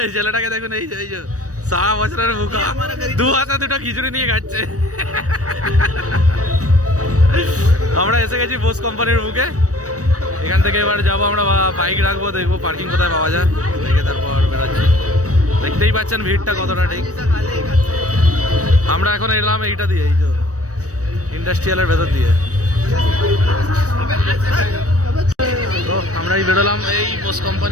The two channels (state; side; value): late; left; 0.66 ms